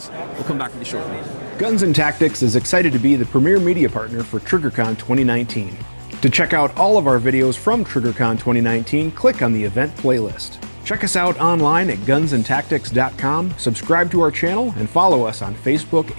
We'll come back with you shortly. Guns and Tactics is excited to be the premier media partner for Triggercon 2019. To check out all of our videos from Triggercon 2019, click on the event playlist. Check us out online at gunsandtactics.com, subscribe to our channel, and follow us on Facebook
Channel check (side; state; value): both; inverted; correlation -1.00